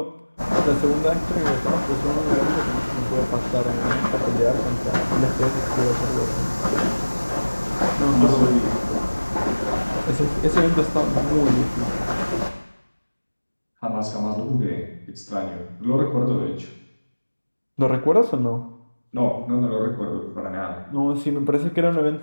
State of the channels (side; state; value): both; inverted; correlation -1.00